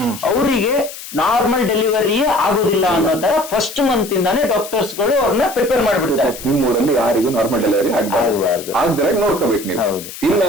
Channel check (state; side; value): noise; left; hiss, 13 dB below the sound